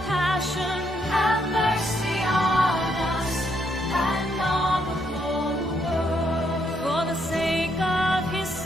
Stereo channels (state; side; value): normal; both; correlation 0.75